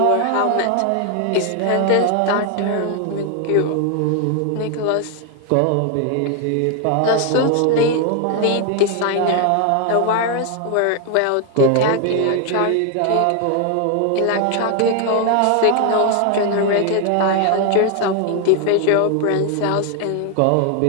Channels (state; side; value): different; both; correlation 0.01